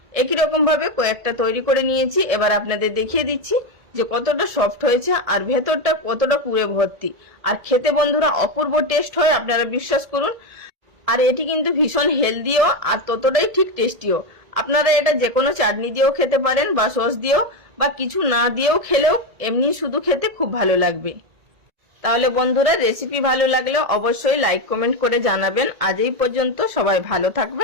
একই রকম ভাবে কয়েকটা তৈরি করে নিয়েছি। এবার আপনাদের দেখিয়ে দিচ্ছি যে কতটা সফট হয়েছে আর ভেতরটা কতটা পুরে ভর্তি। আর খেতে বন্ধুরা অপূর্ব টেস্ট হয়, আপনারা বিশ্বাস করুন। আর এটি কিন্তু ভীষণ হেলদিও আর ততটাই ঠিক টেস্টিও। আপনারা এটা যে কোনো চাটনি দিয়েও খেতে পারেন বা সস দিয়েও বা কিছু না দিয়েও খেলেও এমনি শুধু খেতে খুব ভালো লাগবে। তাহলে বন্ধুরা রেসিপি ভালো লাগলে অবশ্যই লাইক কমেন্ট করে জানাবেন। আজ এই পর্যন্ত, সবাই ভালো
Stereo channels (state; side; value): late; left; 1.7 ms